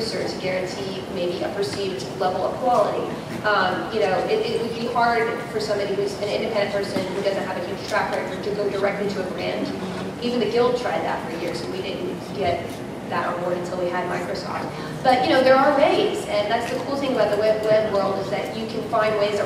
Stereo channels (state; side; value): identical; both; correlation 1.00